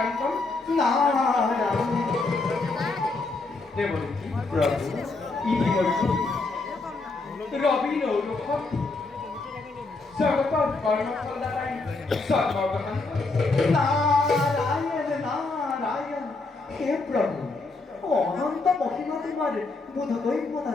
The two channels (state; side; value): quieter; right; 3.6 dB